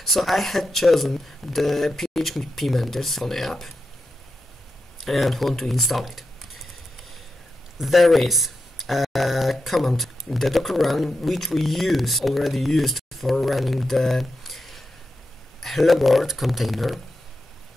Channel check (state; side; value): normal; both; correlation 0.89